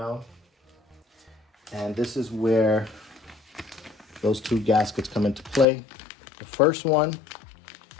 And this is where those two gaskets come into play. The first one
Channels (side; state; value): right; drops out; at 5.7 s